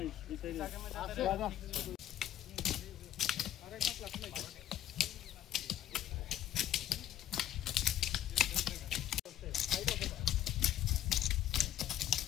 এই সাইডে দাদা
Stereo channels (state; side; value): quieter; right; 11.8 dB